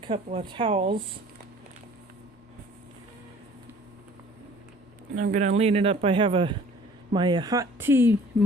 of towels. And I'm going to lean it up. I have my hot tea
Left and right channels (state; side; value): normal; both; correlation 0.52